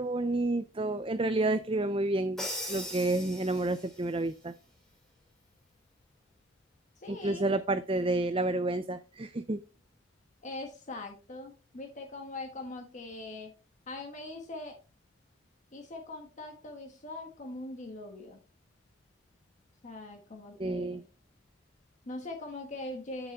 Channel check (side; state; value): both; normal; correlation 0.55